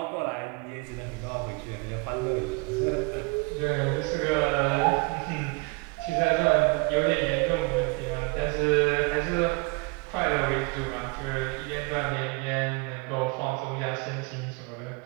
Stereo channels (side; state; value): left; quieter; 28.9 dB